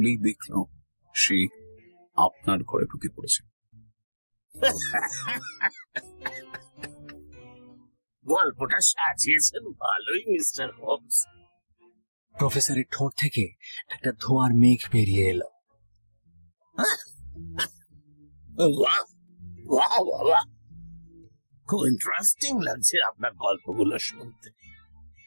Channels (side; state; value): both; inverted; correlation -1.00